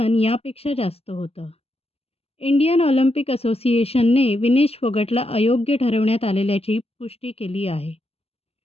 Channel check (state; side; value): late; right; 0.29 ms